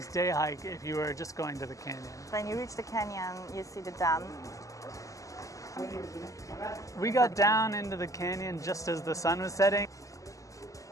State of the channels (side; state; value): right; late; 0.16 ms